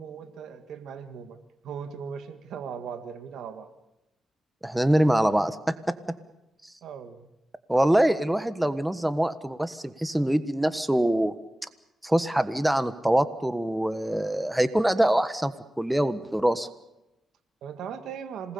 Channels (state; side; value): normal; both; correlation 0.97